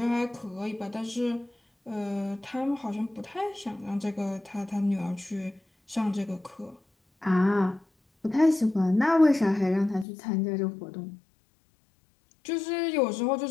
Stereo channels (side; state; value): right; drops out; at 10.1 s